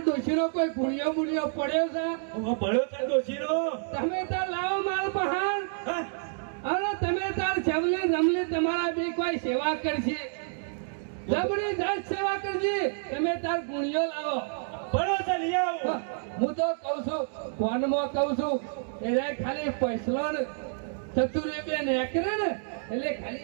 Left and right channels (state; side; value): silent; left; digital silence